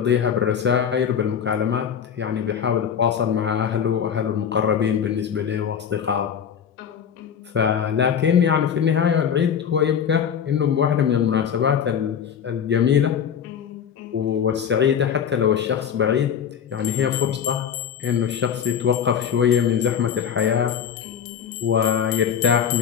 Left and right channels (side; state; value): right; quieter; 8.1 dB